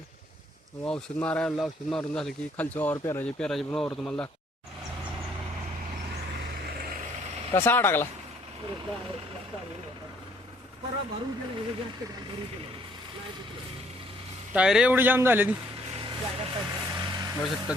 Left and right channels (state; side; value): normal; both; correlation 0.64